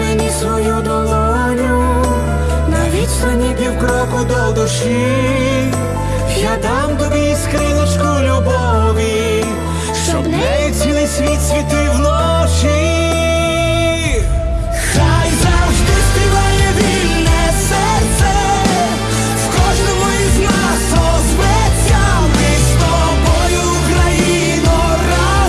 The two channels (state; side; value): identical; both; correlation 1.00